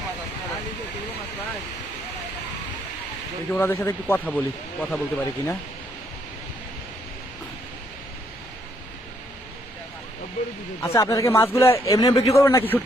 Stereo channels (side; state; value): both; normal; correlation 0.71